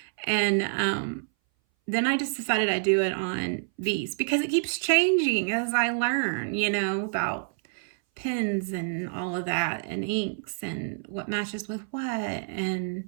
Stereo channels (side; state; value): left; silent; 58 dB below the other